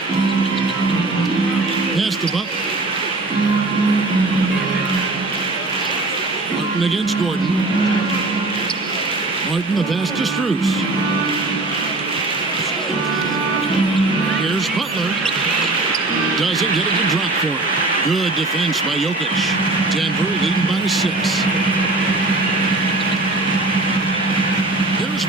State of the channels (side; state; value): left; quieter; 3.0 dB